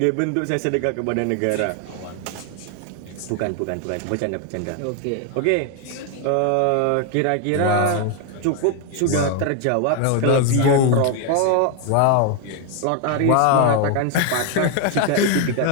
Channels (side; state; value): both; different; correlation 0.01